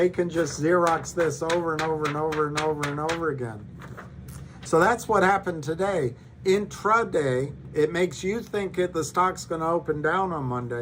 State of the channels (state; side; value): identical; both; correlation 1.00